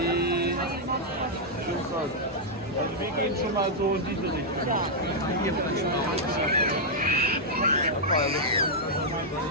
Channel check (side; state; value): both; normal; correlation -0.06